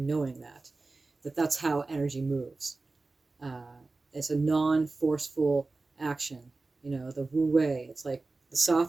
that's how energy moves. It's a non-forceful action. The Wu Wei. It's like the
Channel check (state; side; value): quieter; left; 3.5 dB